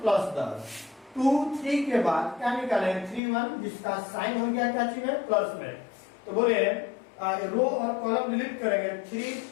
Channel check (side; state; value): right; drops out; at 3.2 s